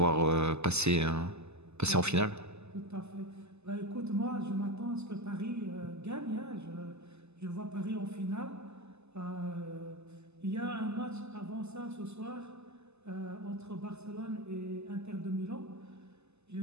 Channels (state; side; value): late; left; 0.80 ms